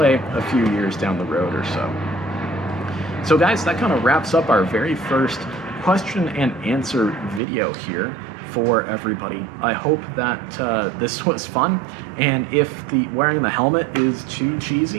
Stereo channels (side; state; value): left; drops out; at 7.4 s